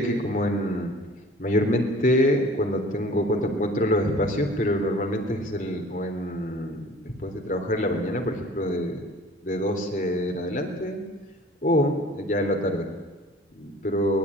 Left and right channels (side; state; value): both; normal; correlation 0.48